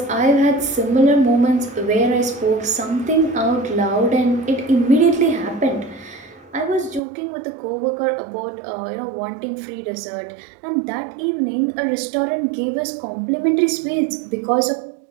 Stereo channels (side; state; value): left; drops out; at 7.0 s